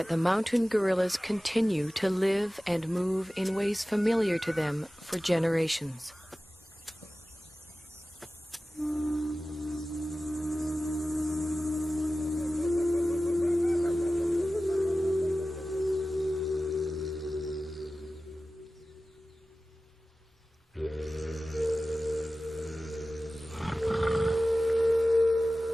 the mountain gorillas continue to live and move in ways familiar to them for generations.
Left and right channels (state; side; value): normal; both; correlation 0.96